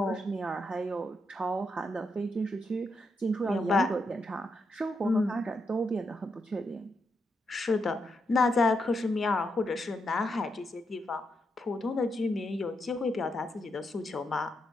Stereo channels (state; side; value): normal; both; correlation 0.82